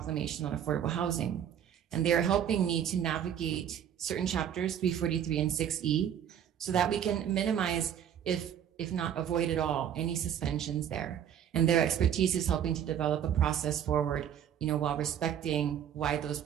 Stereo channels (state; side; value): quieter; left; 9.3 dB